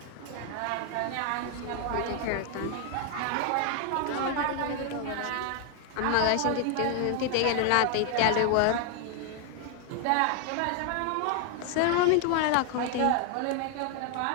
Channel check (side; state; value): both; different; correlation 0.00